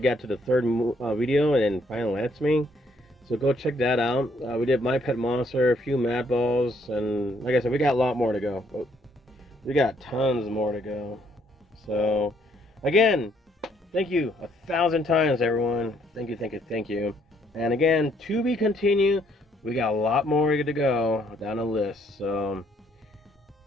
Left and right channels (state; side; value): normal; both; correlation 0.68